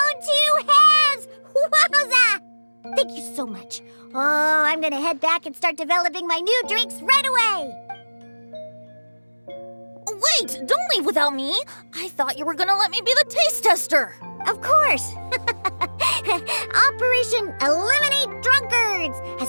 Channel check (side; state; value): both; inverted; correlation -1.00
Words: two hands! Wowza! Thank you so much. Oh, I'm gonna head back and start developing my new drinks right away! Wait, don't leave without me. I thought you were gonna let me be the taste tester. Of course! Operation Eliminate Drunkards